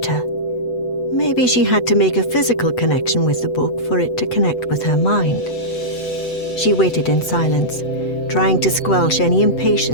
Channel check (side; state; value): right; late; 8.0 ms